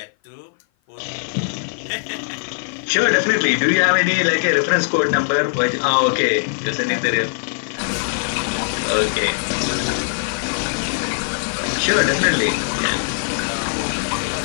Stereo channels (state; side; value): silent; right; 56 dB below the other